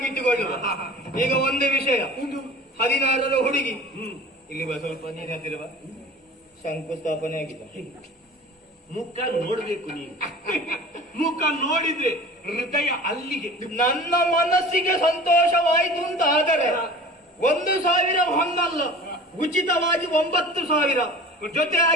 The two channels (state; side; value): normal; both; correlation 0.40